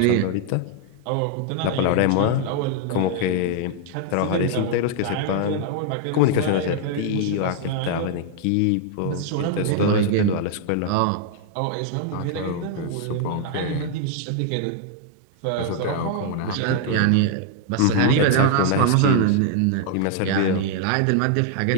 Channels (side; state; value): both; different; correlation 0.00